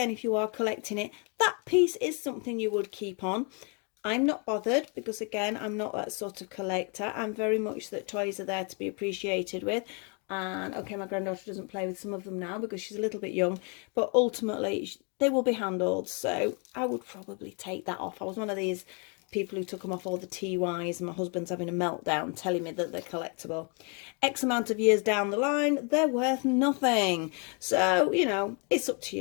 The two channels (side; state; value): right; quieter; 36.3 dB